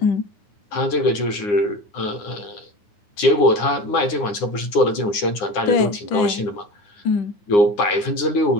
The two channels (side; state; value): right; late; 9.7 ms